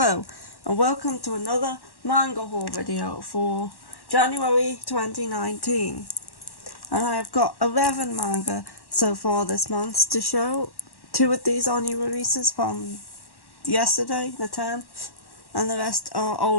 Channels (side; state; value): right; late; 1.1 ms